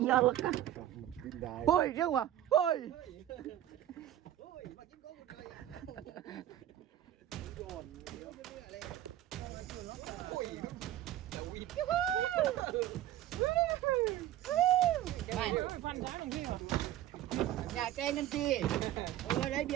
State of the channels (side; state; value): left; quieter; 12.7 dB